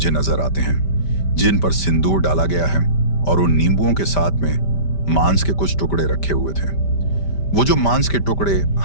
नजर आते हैं जिन पर सिंदूर डाला गया है और उन नींबुओं के साथ में मांस के कुछ टुकड़े रखे हुए थे। वो जो मांस के टुकड़े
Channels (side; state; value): right; late; 5.1 ms